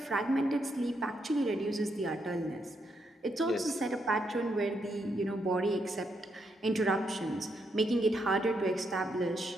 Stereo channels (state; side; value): normal; both; correlation 0.79